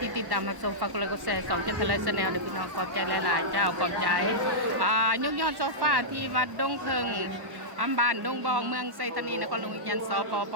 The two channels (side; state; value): left; late; 1.1 ms